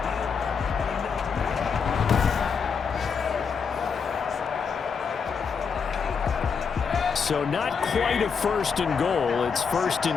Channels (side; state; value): right; quieter; 6.0 dB